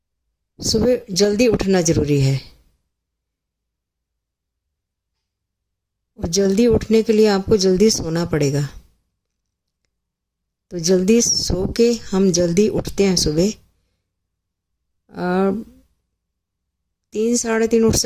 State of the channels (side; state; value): both; identical; correlation 1.00